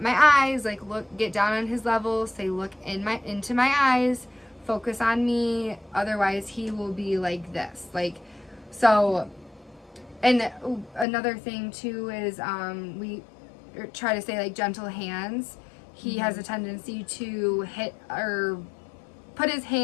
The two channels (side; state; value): right; drops out; at 11.1 s